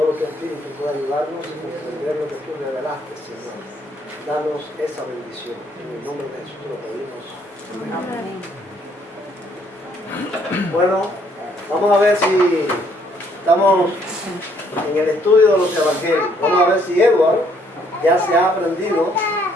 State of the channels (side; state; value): both; normal; correlation 0.66